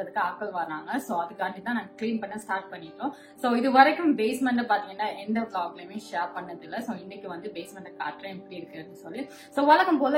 ஆட்கள் வராங்க. சோ அதுக்காண்டி தான் நாங்க கிளீன் பண்ண ஸ்டார்ட் பண்ணிட்டோம். சோ இது வரைக்கும் பேஸ்மெண்ட் பாத்தீங்கன்னா எந்த vlogலயுமே ஷேர் பண்ணது இல்ல. சோ இன்னைக்கு வந்து பேஸ்மெண்ட் காட்டுறேன் எப்படி இருக்குன்னு சொல்லி. சோ வழக்கம்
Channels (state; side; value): identical; both; correlation 1.00